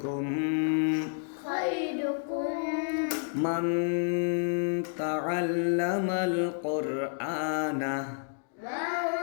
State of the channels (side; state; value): right; silent; digital silence